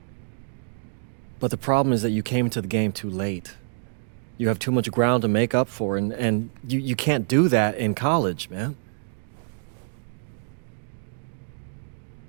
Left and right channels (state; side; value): silent; left; digital silence